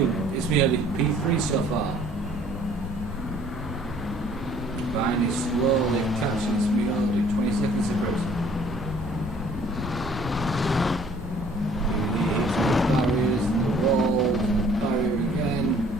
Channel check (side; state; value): both; normal; correlation 0.56